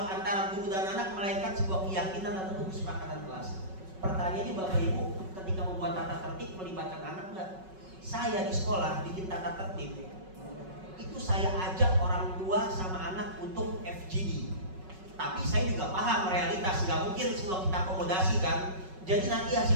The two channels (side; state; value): left; late; 5.4 ms